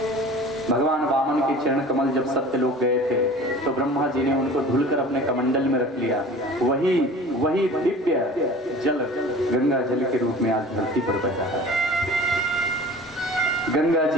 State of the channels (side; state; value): both; normal; correlation 0.42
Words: भगवान वामन के चरण कमल जब सत्यलोक गए थे तो ब्रह्मा जी ने उनको धुलकर अपने कमंडल में रख लिया। वही दिव्य जल गंगा जल के रूप में आज धरती पर बह रहा है। गंगा